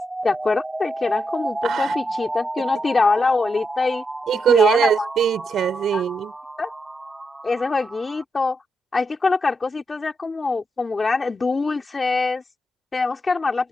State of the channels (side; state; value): both; normal; correlation 0.84